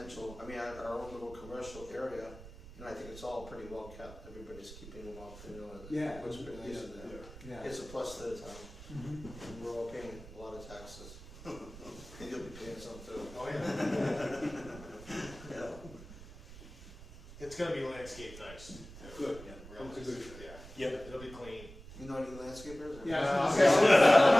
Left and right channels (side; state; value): right; noise; rumble, 16 dB below the sound